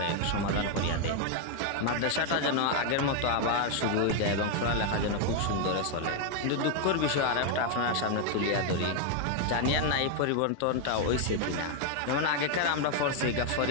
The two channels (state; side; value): different; both; correlation 0.01